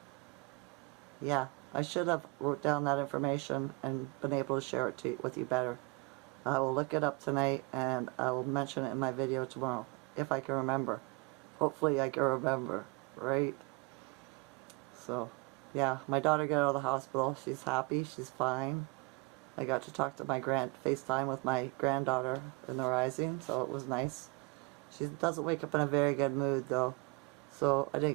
yeah. I should have wrote down that information and been able to share it with you better. I will look it up tonight and I will mention it in my video tomorrow. If I can remember. Hopefully I can remember. Right? So, yeah. My daughter got out of the hospital. She's happy. She's fine. I got to talk to my FaceTime with my granddaughter in the rising, so it was nice. She doesn't wake up in a very good mood, though, so I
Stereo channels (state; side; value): quieter; left; 27.9 dB